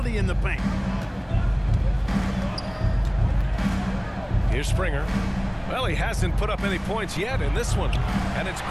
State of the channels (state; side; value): identical; both; correlation 1.00